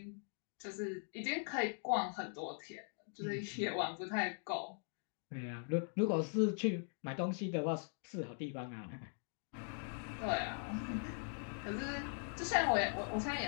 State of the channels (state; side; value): silent; right; 50 dB below the other